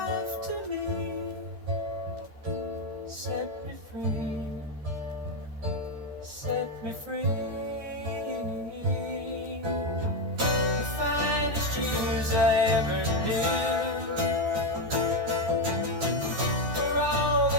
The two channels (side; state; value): left; late; 14 ms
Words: to me, set me free, set me free. The finest years I ever knew, for all